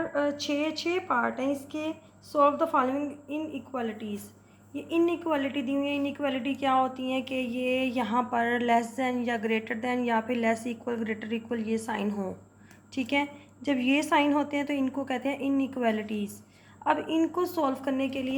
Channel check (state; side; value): identical; both; correlation 1.00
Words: छः पार्ट हैं। इसके solve the following in equalities. ये इन इक्वालिटी दी हुई है। इन इक्वालिटी क्या होती हैं कि ये यहाँ पर लेस दैन या ग्रेटर दैन या फिर लेस इक्वल ग्रेटर इक्वल ये साइन हो। ठीक है, जब ये साइन होते हैं तो इनको कहते हैं इनइक्वालिटीज़। अब इनको सॉल्व करने के